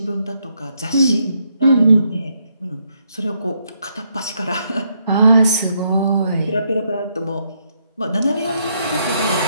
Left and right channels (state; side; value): inverted; both; correlation -0.76